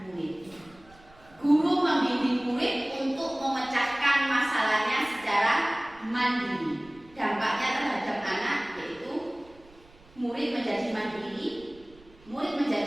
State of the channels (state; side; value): noise; right; rumble, 26 dB below the sound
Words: mandiri. Dampaknya terhadap anak yaitu murid menjadi mandiri, murid